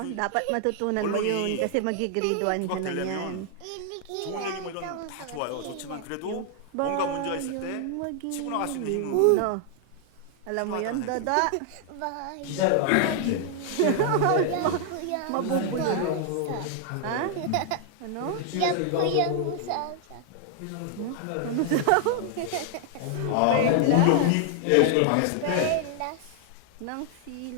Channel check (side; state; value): both; different; correlation 0.00